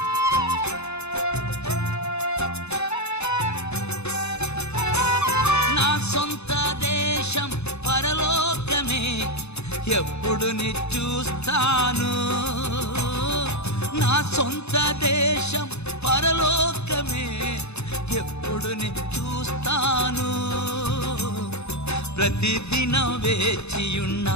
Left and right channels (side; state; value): right; late; 0.80 ms